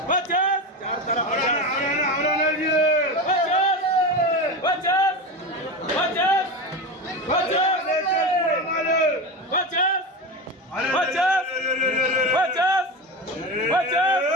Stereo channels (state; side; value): normal; both; correlation 0.22